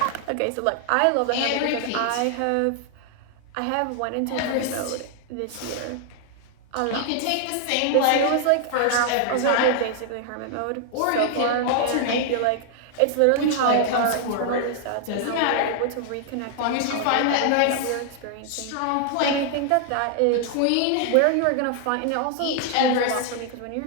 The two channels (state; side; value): different; both; correlation 0.00